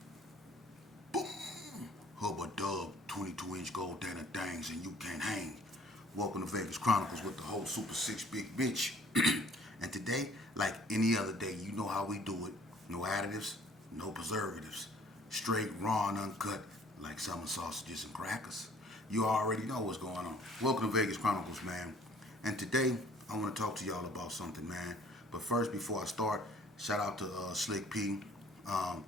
Boom! Hubba dub, 22-inch gold Dana Dangs, and you can't hang. Welcome to Vegas Chronicles with the whole Super 6 Big Bitch. And today, like any other day, you know how we do it. No additives, no preservatives. Straight, raw, and uncut, like summer sausages and crackers. You already know what's going on. Welcome to Vegas Chronicles, man. And today, I want to talk to y'all about something, man. But first, before I start, shout out to Slick P.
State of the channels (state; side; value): normal; both; correlation 0.56